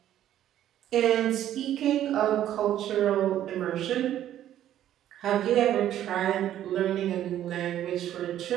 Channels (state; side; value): quieter; left; 11.7 dB